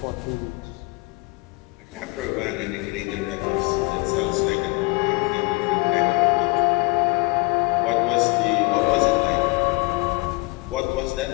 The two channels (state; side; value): quieter; right; 26.2 dB